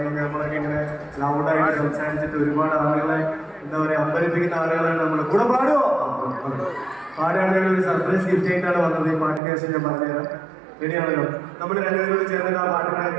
കഴിഞ്ഞാൽ നമ്മളൊക്കെ ഇങ്ങനെ ലൗഡായിട്ട് സംസാരിച്ചിട്ട് ഒരുപാട് ആളുകളെ എന്താ പറയുക അമ്പരിപ്പിക്കുന്ന ആളുകളാണ് നമ്മൾ. കൂടെ പാടുമോ? പാടുകയാണെങ്കിൽ ഒരു സർപ്രൈസ് ഗിഫ്റ്റ് ആയിട്ടാണ് വന്നത്. ഈ പാട്ടിൻ്റെ ശേഷം ഞാൻ പറഞ്ഞുതരാം. റെഡിയാണല്ലോ? നമ്മൾ 2 പേരോട് ചേർന്നിട്ട് ആ പാട്ടിന്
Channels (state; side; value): drops out; left; at 9.4 s